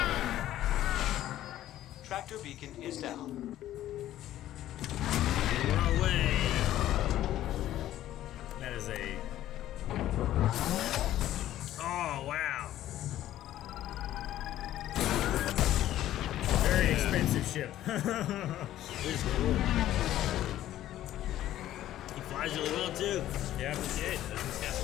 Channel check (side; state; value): right; quieter; 13.2 dB